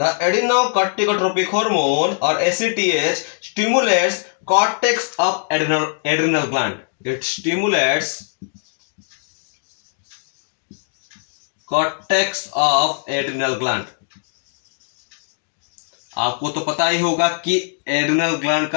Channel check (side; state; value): right; silent; digital silence